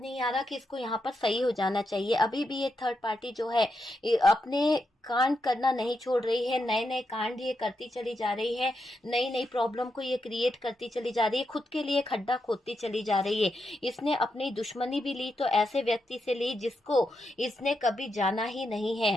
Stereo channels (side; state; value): both; normal; correlation 0.84